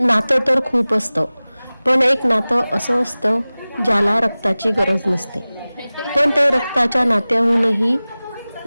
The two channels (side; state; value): both; inverted; correlation -0.98